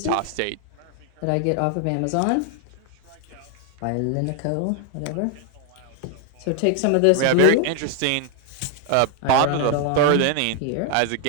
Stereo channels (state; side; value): different; both; correlation 0.00